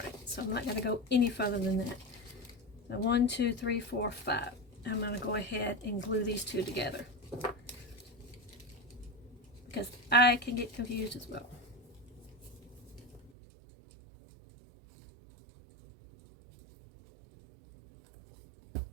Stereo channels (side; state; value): left; drops out; at 13.3 s